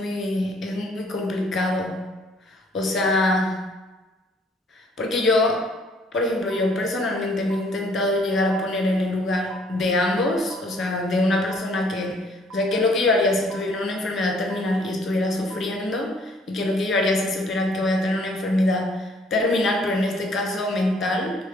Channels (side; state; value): both; normal; correlation 0.61